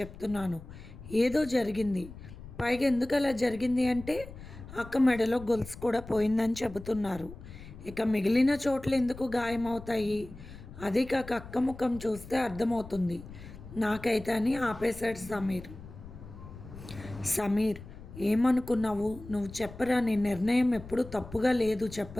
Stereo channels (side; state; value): left; noise; rumble, 15 dB below the sound